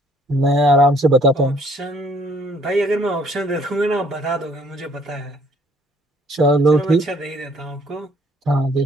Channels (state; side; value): normal; both; correlation 0.62